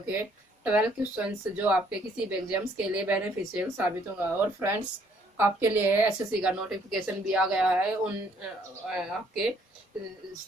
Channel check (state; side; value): normal; both; correlation 0.65